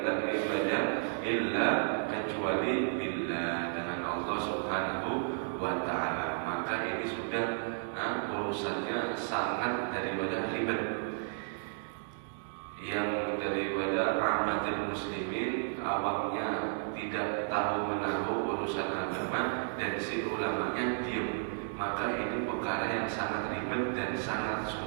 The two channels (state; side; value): silent; left; digital silence